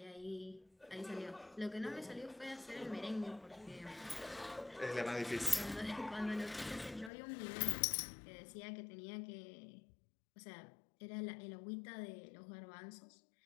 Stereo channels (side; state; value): right; drops out; at 7.1 s